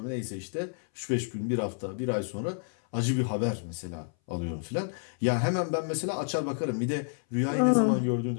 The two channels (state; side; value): silent; right; 58 dB below the other